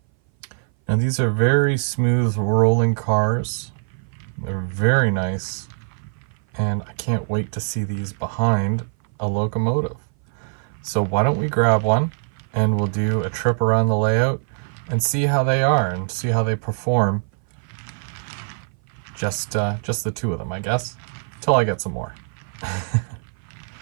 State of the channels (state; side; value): silent; left; 58 dB below the other